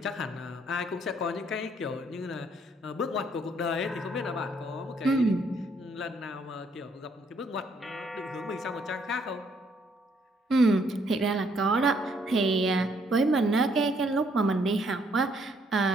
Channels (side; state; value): both; normal; correlation 0.69